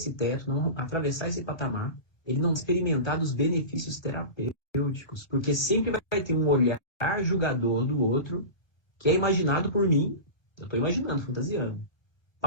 teto, não atravessar esse patamar, ele não experimentar dos benefícios terapêuticos, porque sempre vai ter um olhar julgador do outro, que é imaginado por mim, eu estou imaginando, fantasiando,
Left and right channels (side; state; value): right; late; 1.2 ms